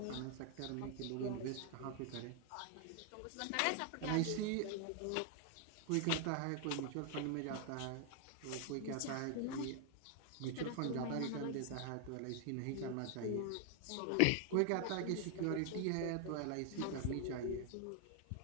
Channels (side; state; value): both; different; correlation 0.00